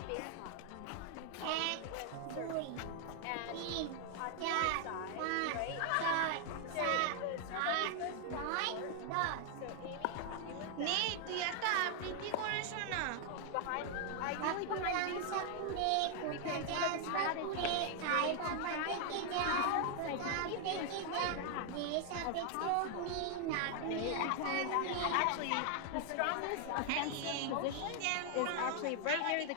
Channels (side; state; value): both; different; correlation 0.00